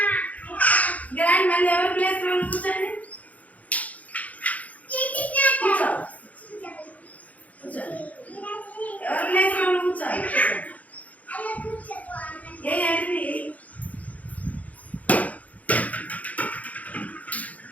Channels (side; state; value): right; late; 0.072 ms